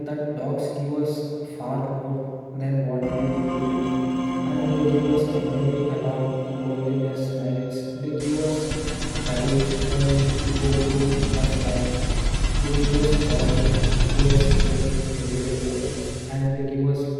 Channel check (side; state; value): both; identical; correlation 1.00